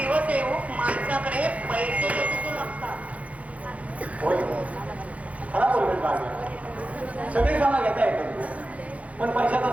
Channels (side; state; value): left; late; 0.066 ms